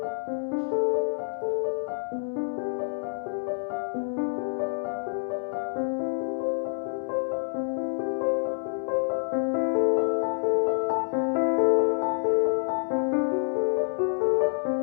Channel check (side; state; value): right; silent; digital silence